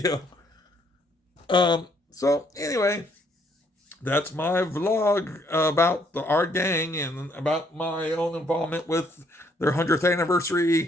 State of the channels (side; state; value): both; normal; correlation 0.68